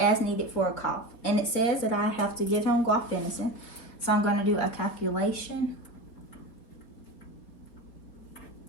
needed for a cough, and it says that I have to give him guaifenesin. So I'm going to do a calculation.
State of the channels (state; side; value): late; right; 4.6 ms